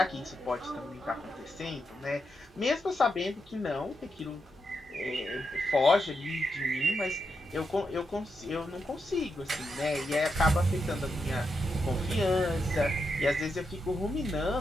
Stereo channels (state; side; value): normal; both; correlation 0.84